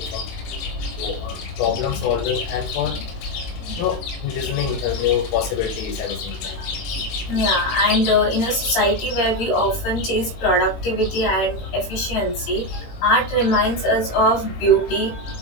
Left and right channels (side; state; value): right; late; 18 ms